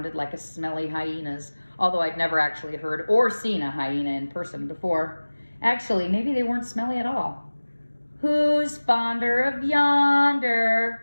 like a smelly hyena's, although I'd never actually heard or seen a hyena in person before. Actually, maybe they weren't smelly at all. "Who's fonder of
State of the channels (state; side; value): inverted; both; correlation -1.00